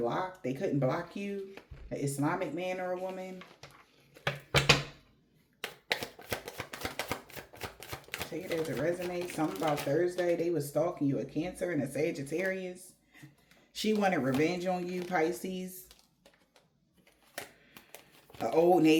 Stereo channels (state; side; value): identical; both; correlation 1.00